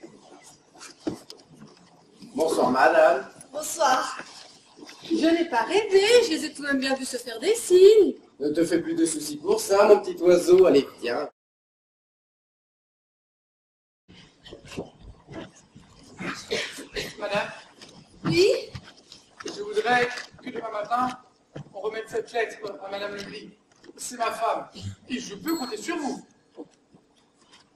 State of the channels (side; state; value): both; identical; correlation 1.00